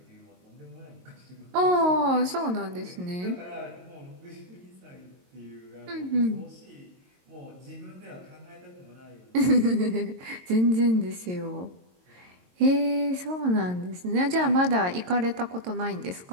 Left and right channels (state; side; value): late; left; 22 ms